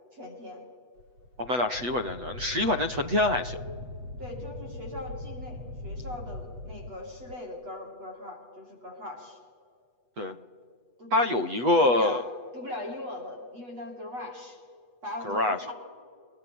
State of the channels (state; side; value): late; left; 8.1 ms